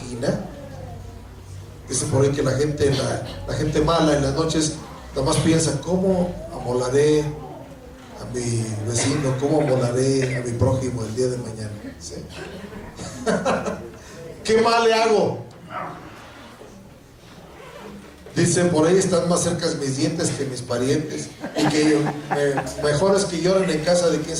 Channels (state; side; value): identical; both; correlation 1.00